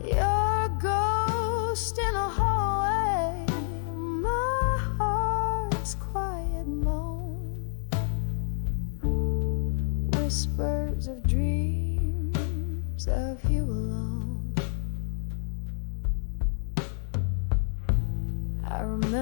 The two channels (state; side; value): silent; right; digital silence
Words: Your ghost in a hallway, my heart's quiet moan. Whispers of dreams of you alone. I